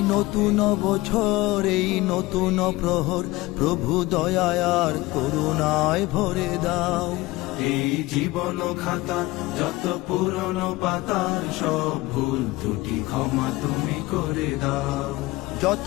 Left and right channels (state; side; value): quieter; right; 20.2 dB